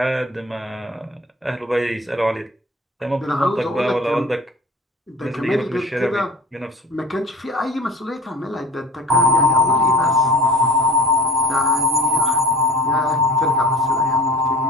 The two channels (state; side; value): normal; both; correlation 0.41